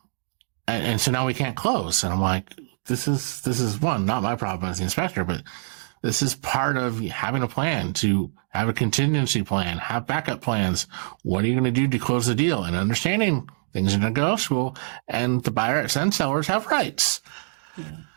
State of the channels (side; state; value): left; silent; digital silence